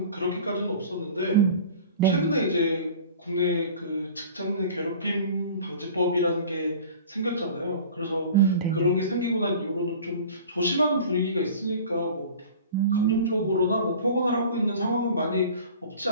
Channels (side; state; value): both; inverted; correlation -0.42